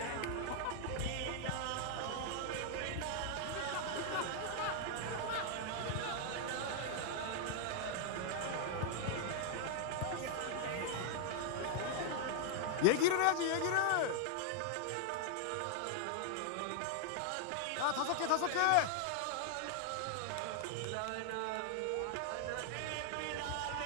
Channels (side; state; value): both; different; correlation 0.00